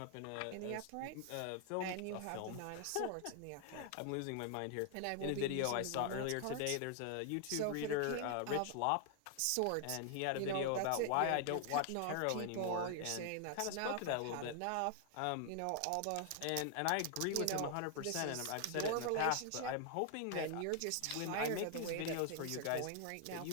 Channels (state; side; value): different; both; correlation 0.00